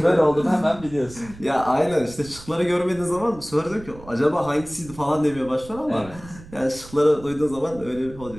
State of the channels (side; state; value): right; noise; rumble, 18 dB below the sound